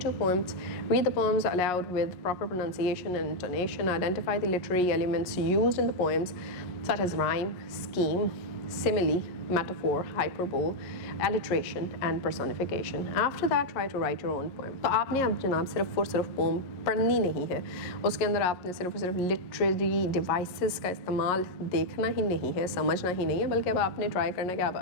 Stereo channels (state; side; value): late; right; 11 ms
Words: poems. Read the poems aloud with proper pronunciation and intonation. Identify the literary elements used in the poems such as rhyme, scheme, simile, metaphor, hyperbole, alliteration and personification. After that, try to write your own poem. तो आपने अब जनाब सिर्फ और सिर्फ pome पढ़नी नहीं है, उसके अंदर आपने सिर्फ और सिर्फ लिटरेरी डिवाइसेस का इस्तेमाल देखना ही नहीं है, समझना ही नहीं है, बल्कि अब आपने ट्राई करना है कि आप